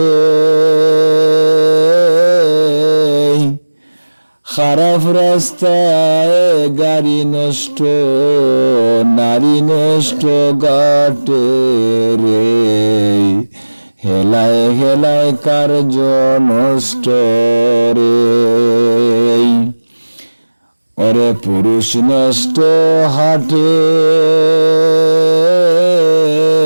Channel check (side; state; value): both; inverted; correlation -1.00